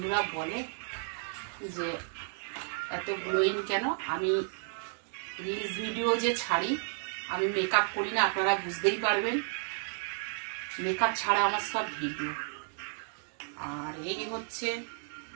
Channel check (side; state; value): left; silent; 56 dB below the other